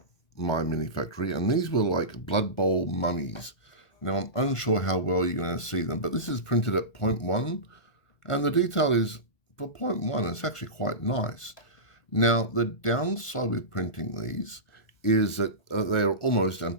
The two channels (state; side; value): late; right; 1.8 ms